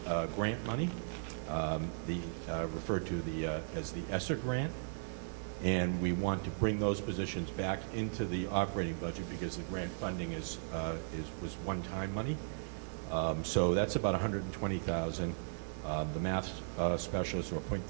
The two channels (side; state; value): left; silent; 53 dB below the other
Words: grant money, referred to as the ESSER grant, and we want to bring those positions back into the operating budget because the grant funding was one-time money. So that's about $120,000. The math specialist, or